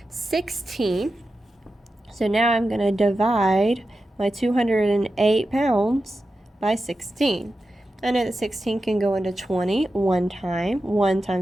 16. So now I'm going to divide my 208 pounds by 16. I know that 16 can go into 20 one time. 1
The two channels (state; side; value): normal; both; correlation 0.91